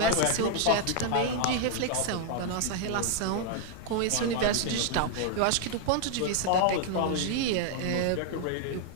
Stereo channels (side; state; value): both; different; correlation 0.00